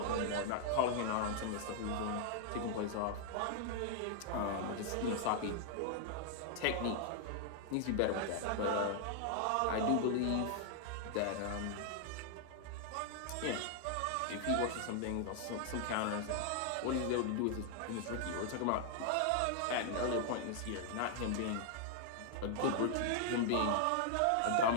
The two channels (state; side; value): different; both; correlation 0.00